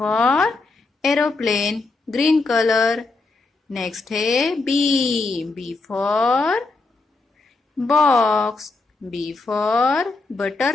aeroplane, green colour. Next है B for box, B for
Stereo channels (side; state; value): right; quieter; 3.6 dB